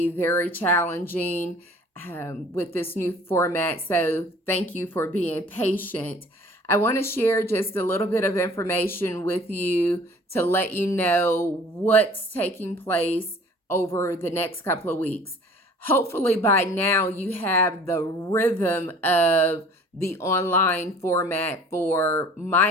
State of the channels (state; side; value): normal; both; correlation 0.49